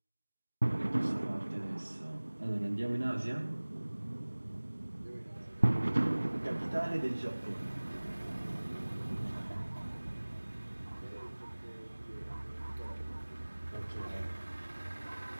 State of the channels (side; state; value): both; inverted; correlation -1.00